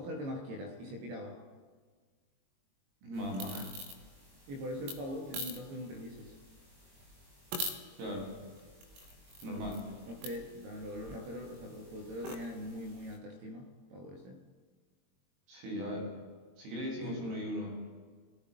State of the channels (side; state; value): left; late; 22 ms